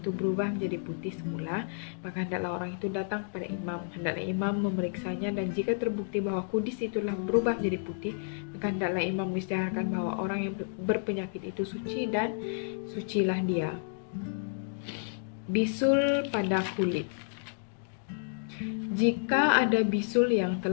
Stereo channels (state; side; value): silent; right; digital silence